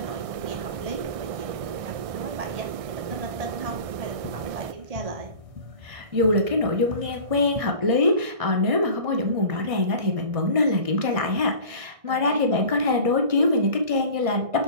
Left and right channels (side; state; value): left; late; 1.6 ms